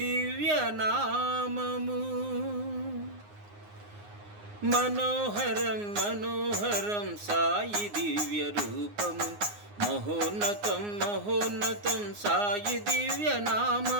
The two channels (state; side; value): late; left; 9.7 ms